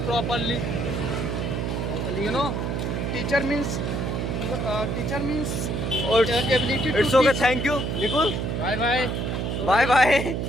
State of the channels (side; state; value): right; noise; hum, 1 dB below the sound